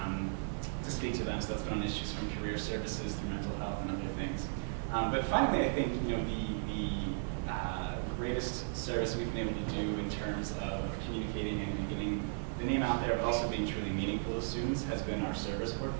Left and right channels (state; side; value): silent; left; 54 dB below the other